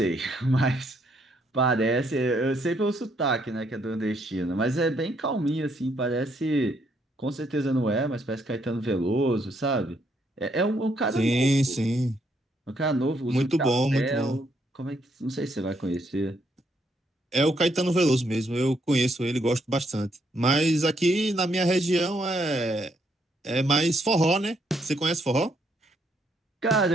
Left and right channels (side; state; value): both; normal; correlation 0.73